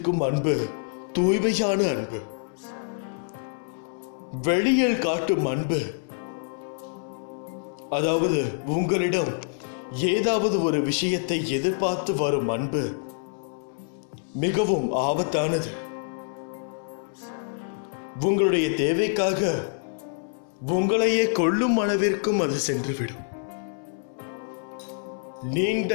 அன்பு தூய்மையான அன்பு. வெளியில் காட்டும் அன்பு, அதாவது உங்களிடம் ஏதாவது ஒரு விஷயத்தை எதிர்பார்த்து வரும் அன்பு, மிகவும் ஆபத்தானது. உங்களுடைய தேவைக்காக உங்களையே கொல்லும் அளவிற்கும் அது சென்றுவிடும். நீண்ட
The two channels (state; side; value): silent; right; digital silence